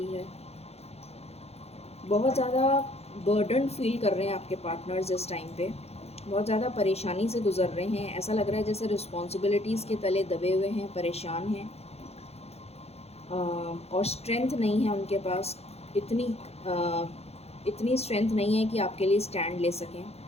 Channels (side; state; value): right; late; 0.30 ms